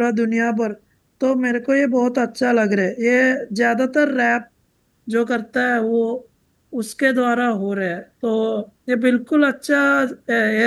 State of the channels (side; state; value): both; identical; correlation 1.00